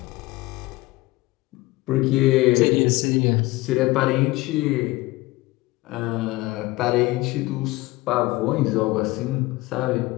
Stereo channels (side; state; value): right; quieter; 20.2 dB